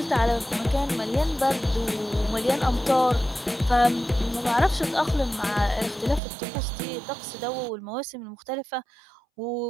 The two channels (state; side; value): drops out; left; at 6.2 s